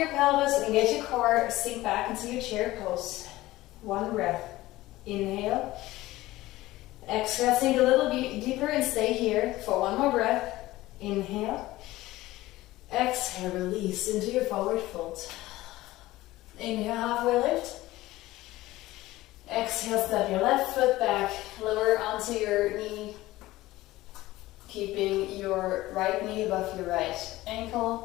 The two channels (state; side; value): quieter; right; 17.4 dB